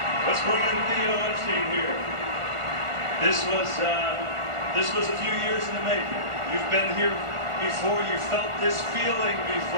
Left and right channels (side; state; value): left; late; 1.4 ms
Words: Let's bring in Theo Epstein here. This was a few years in the making. You've been here before. You felt this feeling